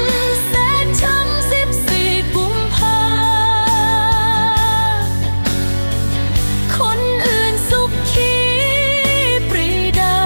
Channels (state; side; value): inverted; both; correlation -1.00